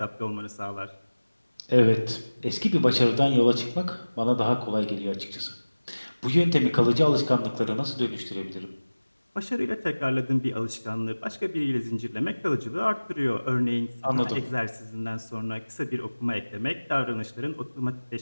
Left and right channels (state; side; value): inverted; both; correlation -1.00